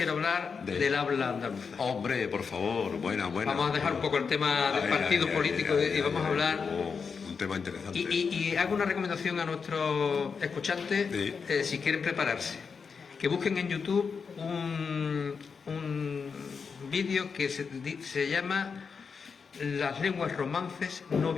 hablar del habla andaluza. Hombre, por favor, buena. Vamos a dejar un poco el tema del partido político y vamos a hablar... un tema interesante. Y hago una recomendación a nuestros escuchantes, si quieren prepararse, que busquen en YouTube un vídeo que se llama Las lenguas romances no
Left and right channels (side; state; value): right; quieter; 5.6 dB